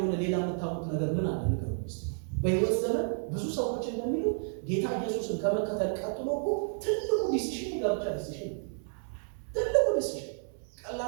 ሌላ የምታውቁት ነገር ምን አለ? ነገር ውስጥ በሕይወት ዘመን ብዙ ሰዎች እንደሚሉ ጌታ ኢየሱስን ከመከተል ቀጥሎ እኮ ትልቁ ዲሲሽን የጋብቻ ዲሲሽን፣ ትልቁ ዲሲሽን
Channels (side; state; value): left; silent; 57 dB below the other